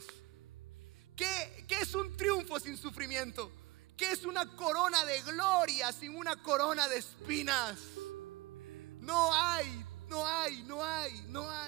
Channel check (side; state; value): left; quieter; 22.1 dB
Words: ¿Qué es un triunfo sin sufrimiento? ¿Qué es una corona de gloria sin una corona de espinas? No hay.